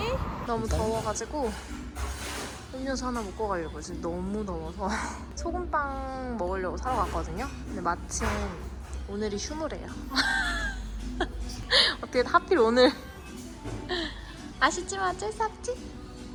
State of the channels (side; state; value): both; identical; correlation 1.00